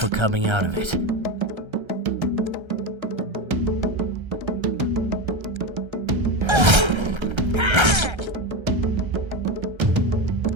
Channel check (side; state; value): left; late; 1.3 ms